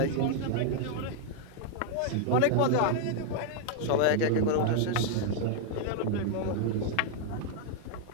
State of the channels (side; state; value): both; different; correlation 0.00